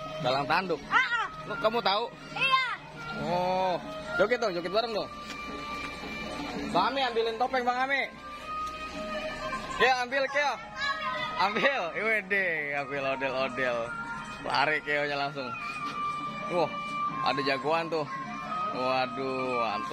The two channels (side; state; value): both; identical; correlation 1.00